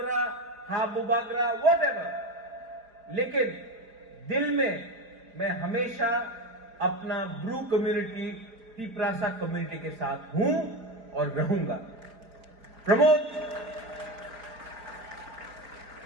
हा बुबागरा, वॉट एवर. लेकिन दिल में मैं हमेशा अपना ब्रू कम्युनिटी, तिपरासा कम्युनिटी के साथ हूं और रहूंगा. Pramod,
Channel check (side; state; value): left; late; 4.3 ms